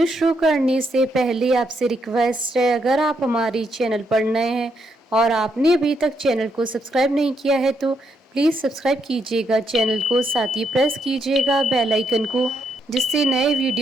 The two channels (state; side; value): normal; both; correlation 0.77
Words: शुरू करने से पहले आपसे रिक्वेस्ट है, अगर आप हमारे चैनल पर नए हैं और आपने अभी तक चैनल को सब्सक्राइब नहीं किया है तो प्लीज़ सब्सक्राइब कीजिएगा चैनल को, साथ ही प्रेस कीजिएगा बेल आइकन को, जिससे नए